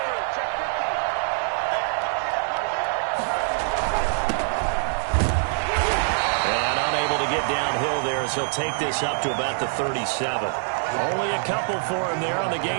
unable to get downhill there as he'll take this up to about the 37. Only a couple for him there on the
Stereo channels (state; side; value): silent; left; 62 dB below the other